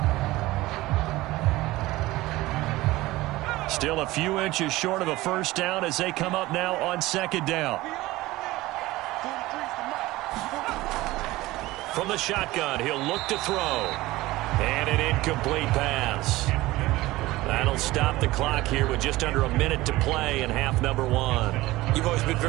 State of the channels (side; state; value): left; quieter; 18.6 dB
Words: Still a few inches short of a first down as they come up now on 2nd down. From the shotgun, he'll look to throw. And an incomplete pass. That'll stop the clock here with just under a minute to play in half number 1. You've always been